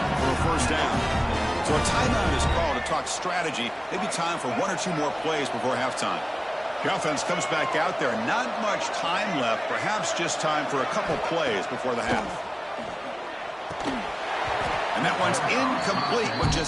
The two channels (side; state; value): both; identical; correlation 1.00